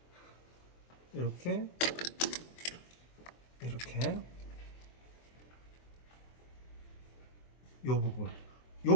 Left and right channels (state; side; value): late; right; 23 ms